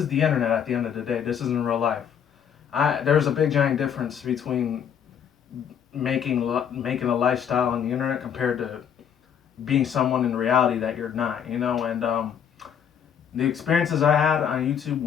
the internet at the end of the day. This isn't real life. There's a big giant difference between making a lifestyle on the internet compared to being someone in reality that you're not, you know. And the experiences I had on YouTube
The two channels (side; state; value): right; quieter; 8.3 dB